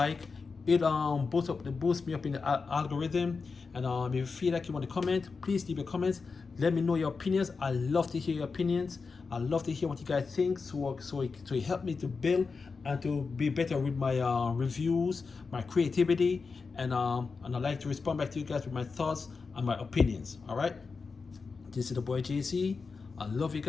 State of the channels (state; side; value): quieter; right; 4.7 dB